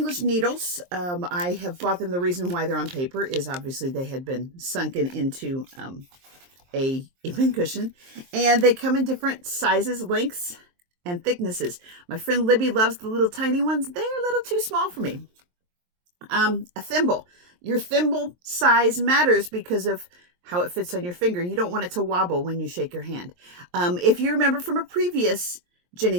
needles, I have bought them. The reason why they're on paper is obviously they had been sunken into a pincushion, and they come in different sizes, lengths, and thicknesses. My friend Libby loves the little tiny ones. They're a little too small for me. A thimble. Your thimble size matters because of how it fits on your finger. You don't want it to wobble when you shake your hand. If you remember from a previous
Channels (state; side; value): late; left; 23 ms